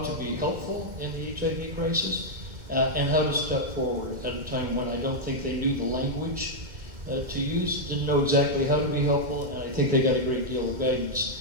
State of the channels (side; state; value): left; late; 2.3 ms